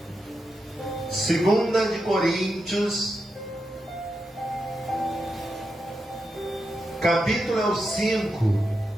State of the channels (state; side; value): normal; both; correlation 0.87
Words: 2 de Coríntios, capítulo 5,